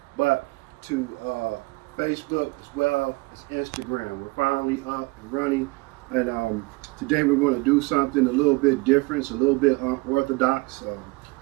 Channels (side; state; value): left; quieter; 24.8 dB